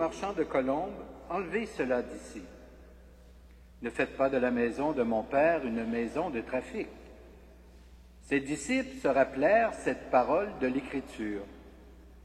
de colombes, « Enlevez cela d'ici. Ne faites pas de la maison de mon Père une maison de trafic. » Ses disciples se rappelèrent cette parole de l'Écriture.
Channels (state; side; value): identical; both; correlation 1.00